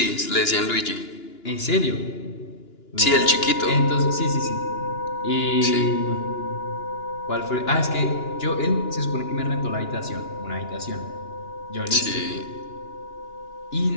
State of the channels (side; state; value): right; late; 2.9 ms